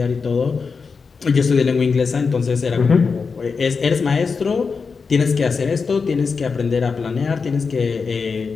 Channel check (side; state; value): right; quieter; 5.1 dB